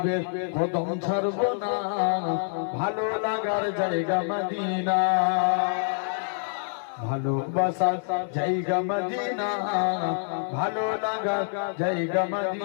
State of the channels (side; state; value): right; silent; digital silence